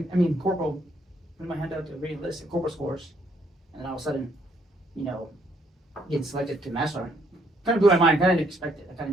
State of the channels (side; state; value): both; normal; correlation 0.70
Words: Corporal, putting my hand out to re-enlist at Corporal scores, and then all of a sudden, getting selected to Master Sergeant. Kind of blew my mind. Kind of didn't expect it.